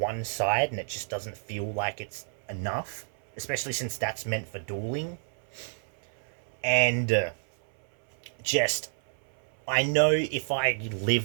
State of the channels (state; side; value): silent; left; 58 dB below the other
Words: side and it just doesn't feel like it's enough, especially since that's meant for dueling. And just, I know if I